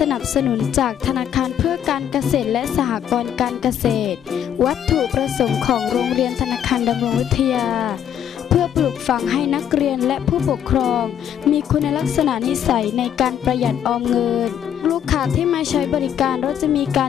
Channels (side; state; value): right; quieter; 9.6 dB